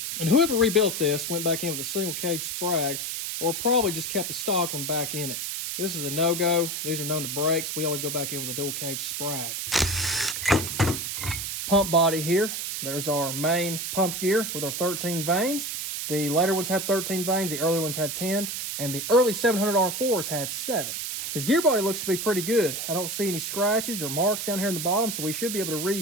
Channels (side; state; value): right; noise; hiss, 4 dB below the sound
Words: And whoever rebuilt this went back in with a single cage Sprag, or probably just kept the stock one back in it. This is a no-go. These are known to breaks. We always go back in with a dual cage Sprag. Pump body here. There's our main pump gear with our 13 vanes. The later ones had 13 vanes, the earlier ones had 10, and the early 700 R4s had 7. His gear body looks to be pretty good. I don't see any scratches or marks down here in the bottom, so we should be able to